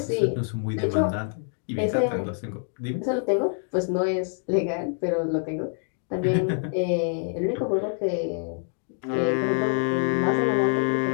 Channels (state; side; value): silent; right; 61 dB below the other